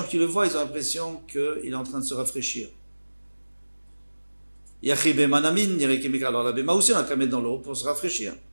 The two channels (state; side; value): inverted; both; correlation -1.00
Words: qui le voient, ils ont l'impression qu'il est en train de se rafraîchir. Yachi Bema Nami nire kemikar. Alors la BMA aussi on a qu'à mettre dans l'eau pour se rafraîchir.